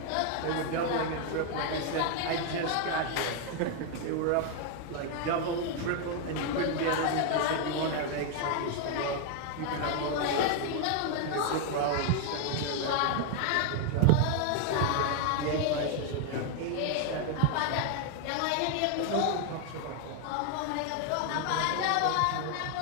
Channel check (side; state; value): both; different; correlation 0.00